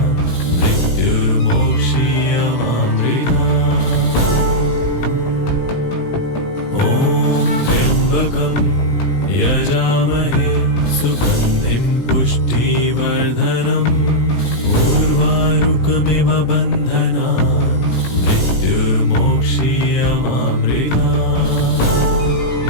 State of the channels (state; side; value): late; right; 18 ms